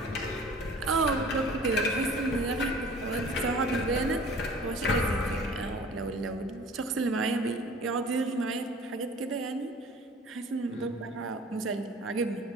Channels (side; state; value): both; normal; correlation 0.46